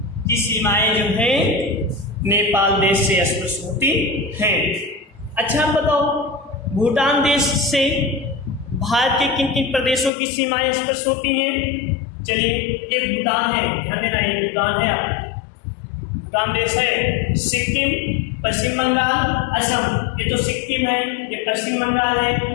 की सीमाएं जो है नेपाल देश से स्पर्श होती हैं। अच्छा बताओ, भूटान देश से भारत के किन किन प्रदेशों की सीमाएं स्पर्श होती हैं? चलिए, ये भूटान है, ध्यान देना, ये भूटान है, भूटान देश है, सिक्किम, पश्चिम बंगाल, असम। ये तो सिक्किम है, ये पश्चिम बंगाल है,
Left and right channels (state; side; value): drops out; right; at 10.1 s